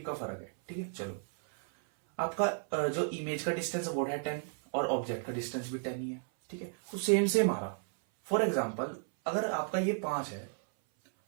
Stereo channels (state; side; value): silent; left; 55 dB below the other